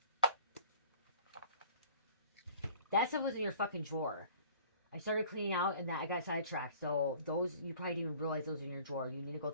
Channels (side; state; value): both; inverted; correlation -0.50